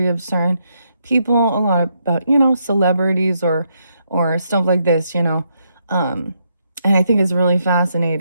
of certain people, a lot about, celebrities or stuff like this, and I think it's really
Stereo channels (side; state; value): both; inverted; correlation -0.78